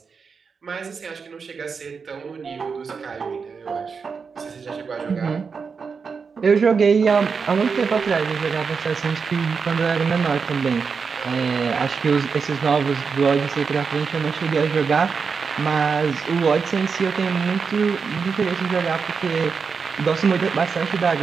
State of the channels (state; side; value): quieter; left; 5.5 dB